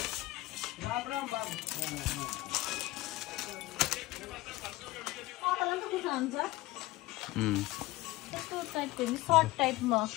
यस्तो टाइपको सर्ट टाइपमा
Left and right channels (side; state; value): right; quieter; 18.6 dB